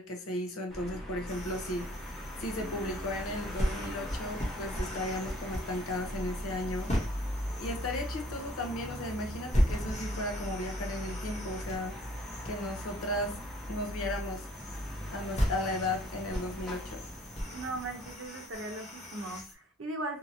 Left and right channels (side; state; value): both; normal; correlation 0.59